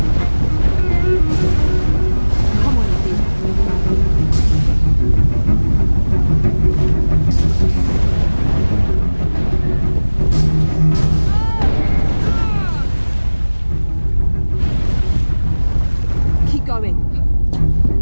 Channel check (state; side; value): inverted; both; correlation -1.00